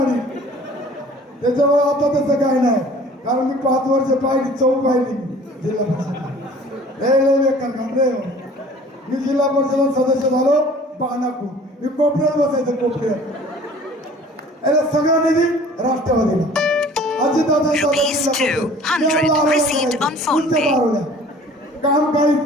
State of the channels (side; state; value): both; normal; correlation 0.49